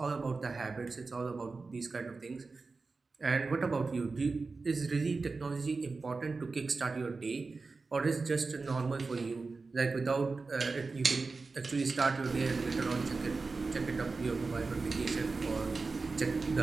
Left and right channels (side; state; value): left; quieter; 4.0 dB